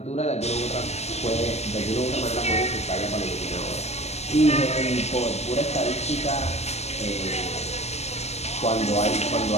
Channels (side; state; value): right; late; 0.31 ms